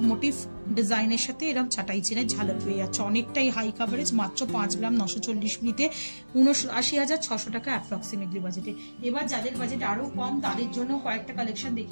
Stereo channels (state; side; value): inverted; both; correlation -1.00